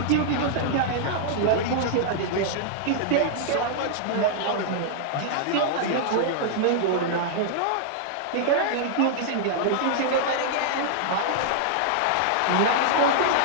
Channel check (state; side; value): different; both; correlation -0.01